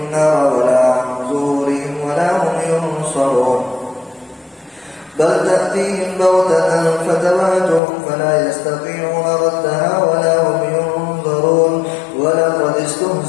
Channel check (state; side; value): drops out; right; at 7.8 s